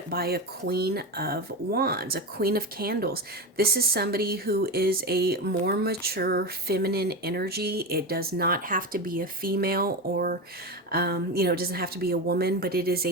by a Queen of Wands, a Queen of Candles. This is somebody who is a more mature feminine energy. It does not have to be a female, or it doesn't have to be a woman, but it is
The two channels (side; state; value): both; normal; correlation 0.19